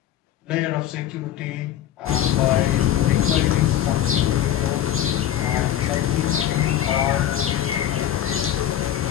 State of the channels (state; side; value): quieter; right; 11.3 dB